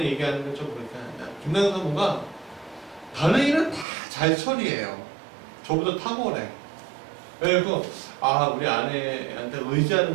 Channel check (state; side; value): drops out; left; at 3.9 s